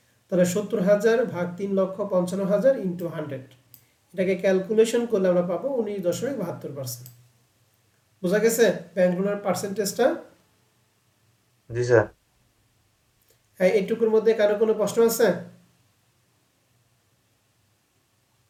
তাহলে 70,000 ভাগ 3,55,000 ইন্টু 100। এটাকে ক্যালকুলেশন করলে আমরা পাবো 19.72%। বোঝা গেছে ব্যাংক লোনের পার্সেন্টেজটা? জি স্যার। হ্যাঁ, এইটুকুর মধ্যে কারো কোনো প্রশ্ন আছে?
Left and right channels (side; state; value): both; identical; correlation 1.00